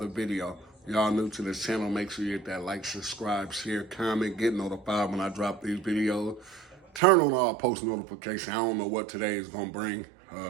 video. Y'all new to this channel, make sure you hit that like, subscribe, share, comment, get notified when I drop these videos. Turn on all post notifications. I don't know what today is gonna bring.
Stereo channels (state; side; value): drops out; left; at 7.0 s